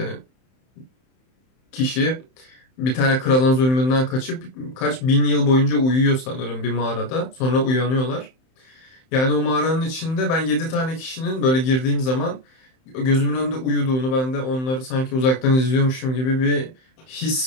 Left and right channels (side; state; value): right; late; 31 ms